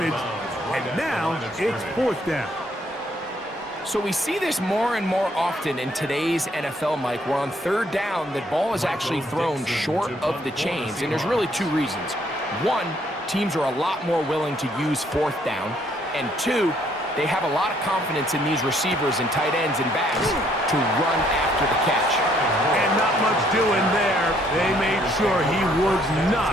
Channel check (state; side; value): normal; both; correlation 0.67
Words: And now it's 4th down. So we see this more and more often in today's NFL, Mike, where on 3rd down, the ball is actually thrown short of the chains. And there's really 2 reasons. 1, teams are a lot more willing to use 4th down. And 2, they have a lot of confidence in these receivers and tight ends and backs to run after the catch. And not much doing there. They made sure he would